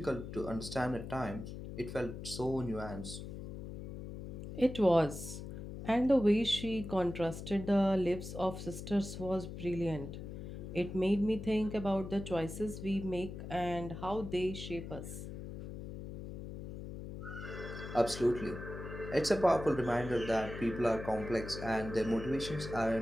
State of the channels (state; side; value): noise; left; hum, 9 dB below the sound